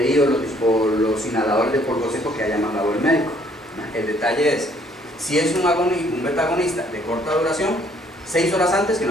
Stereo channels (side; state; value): both; normal; correlation 0.63